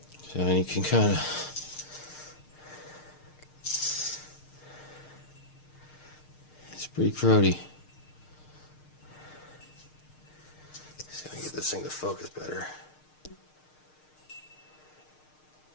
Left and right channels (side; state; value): right; late; 6.6 ms